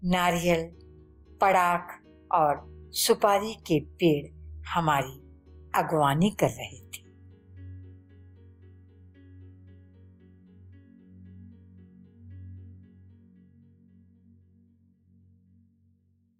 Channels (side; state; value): both; identical; correlation 1.00